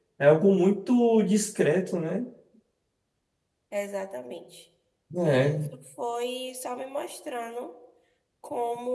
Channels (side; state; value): both; identical; correlation 1.00